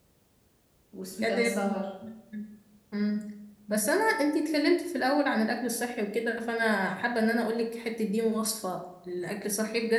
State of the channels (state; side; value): identical; both; correlation 1.00